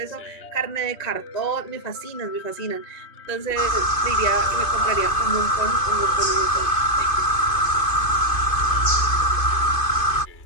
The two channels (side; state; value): right; late; 2.5 ms